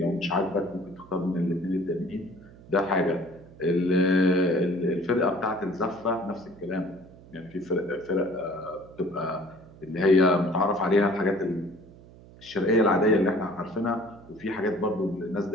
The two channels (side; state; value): right; noise; hum, 21 dB below the sound